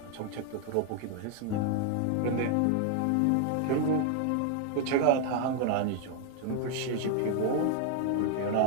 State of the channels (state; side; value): different; both; correlation 0.00